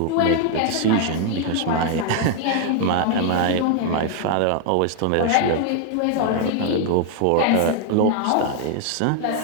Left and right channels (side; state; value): both; different; correlation 0.00